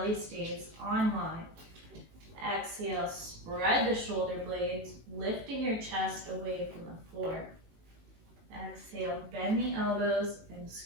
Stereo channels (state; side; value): late; left; 18 ms